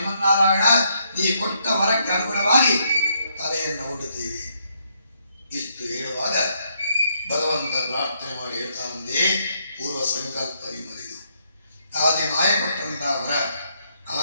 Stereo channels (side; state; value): both; inverted; correlation -0.74